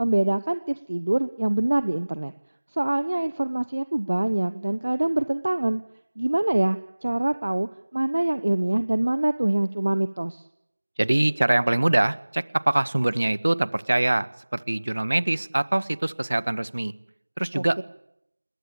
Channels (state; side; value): inverted; both; correlation -1.00